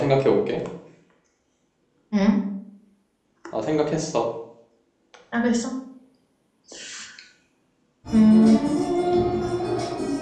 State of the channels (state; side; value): identical; both; correlation 1.00